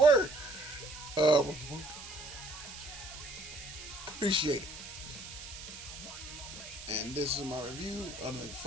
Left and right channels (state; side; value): noise; right; hiss, 12 dB below the sound